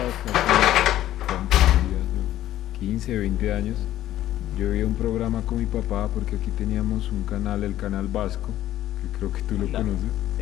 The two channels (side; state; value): right; quieter; 13.3 dB